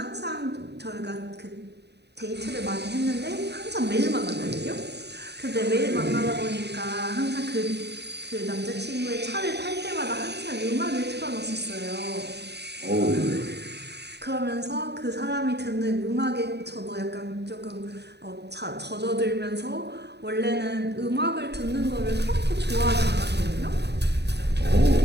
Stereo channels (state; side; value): late; left; 0.49 ms